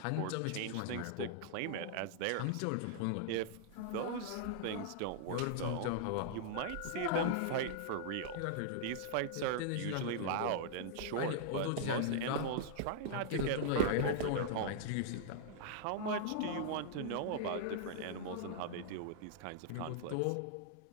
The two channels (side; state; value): both; different; correlation -0.01